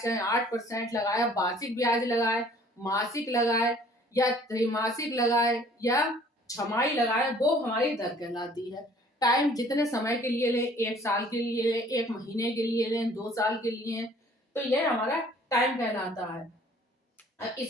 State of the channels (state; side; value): normal; both; correlation 0.55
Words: 8% लगाए, वार्षिक ब्याज लगाए, मासिक लगाए, या त्रैमासिक लगाए, या छमाही लगाए, वो हमारी दर कहलाती है। टाइम जितने समय के लिए ले, 1 साल के लिए ले, 1 महीने के लिए ले, 2 साल के लिए, तो ये हमारा टाइम कहलाता है।